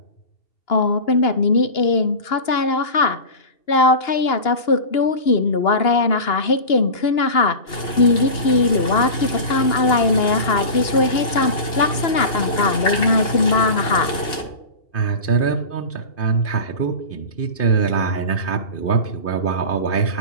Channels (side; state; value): right; late; 2.9 ms